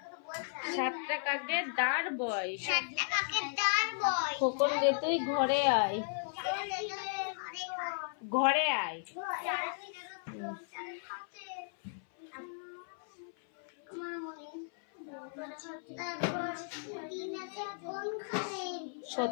7টা কাকের দাঁড় বয়। খোকন গে তুই ঘরে আয়, ঘরে আয়।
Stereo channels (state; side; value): silent; right; 54 dB below the other